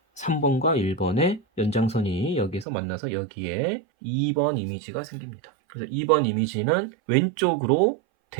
3번과 1번의 연장선이 여기에서 만나서 여기에 2번 이미지가 생깁니다. 그래서 2번 이미지는 왼쪽으로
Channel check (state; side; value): drops out; left; at 2.7 s